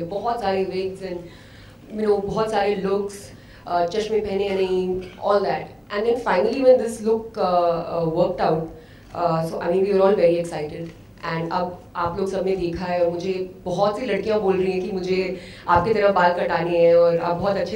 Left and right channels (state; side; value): identical; both; correlation 1.00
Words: बहुत सारे विग्स एंड बहुत सारे लुक्स, चश्मे पहने या नहीं, all that. And then finally when this look worked out, so I mean we are all very excited. And अब आप लोग सबने देखा है और मुझे बहुत सी लड़कियां बोल रही हैं कि मुझे आपकी तरह बाल कटाने हैं और आप बहुत